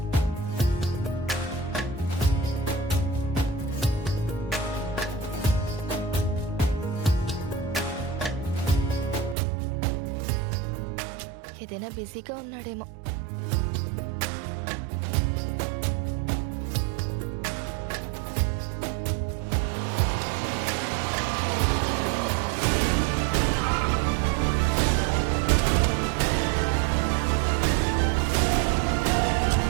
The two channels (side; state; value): left; drops out; at 9.3 s